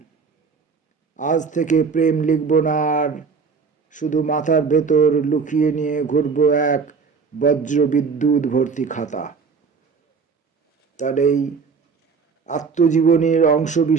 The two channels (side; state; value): left; quieter; 5.2 dB